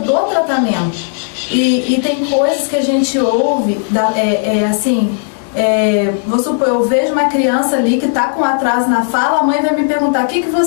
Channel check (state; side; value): silent; right; digital silence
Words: tratamento, e tem coisas que a gente ouve, vou supor, eu vejo uma criança ali que está com atraso na fala, a mãe vai me perguntar, o que